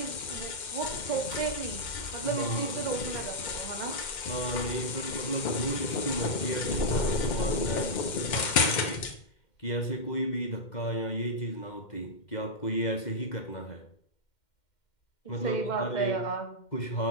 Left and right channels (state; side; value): late; right; 2.1 ms